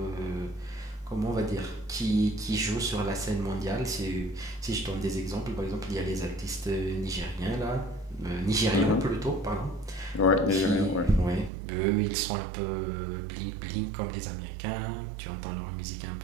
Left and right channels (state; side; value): drops out; left; at 11.5 s